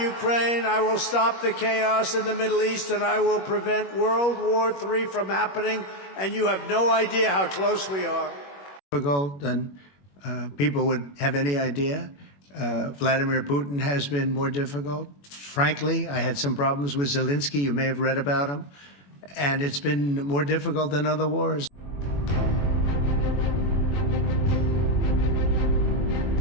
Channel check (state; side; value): late; right; 21 ms